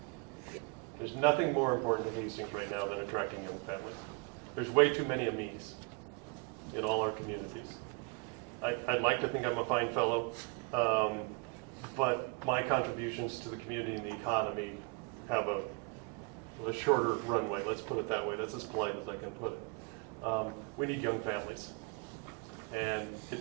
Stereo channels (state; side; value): quieter; left; 30.3 dB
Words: There's nothing more important to Hastings right now than attracting young families. There's way too many Amis in all our communities. I'd like to think I'm a fine fellow, but my contributions to the community and the economy have a shorter runway, let's put it that way. That's as polite as I can put it. We need young families. And